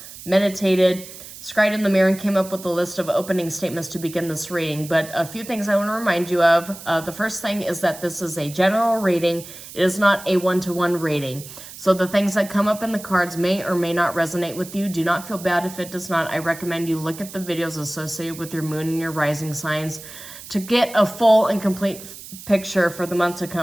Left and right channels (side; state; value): right; noise; hiss, 15 dB below the sound